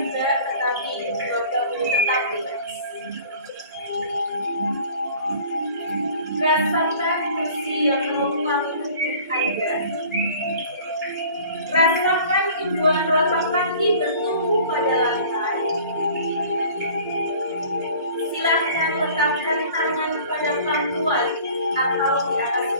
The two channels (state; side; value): inverted; both; correlation -0.47